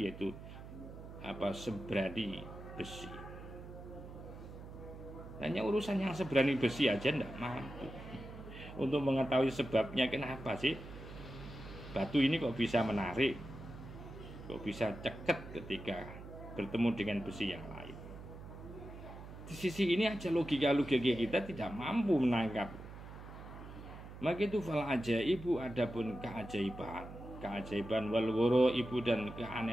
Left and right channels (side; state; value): right; noise; hum, 13 dB below the sound